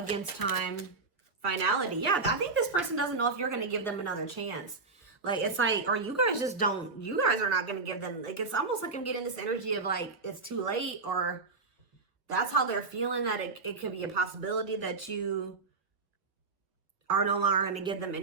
against time, finality. Yeah, I think this person doesn't know if you're going to give them another chance. Like, it's like, or you guys just don't, you guys are not going to give them, like, it's almost like I'm getting this energy of like, it's too late, or that's how they're feeling, that it could be a possibility that you are no longer going to give them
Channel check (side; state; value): left; quieter; 4.1 dB